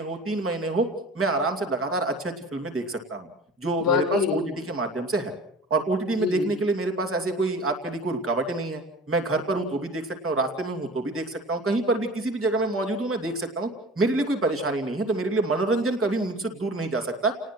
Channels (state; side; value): normal; both; correlation 0.40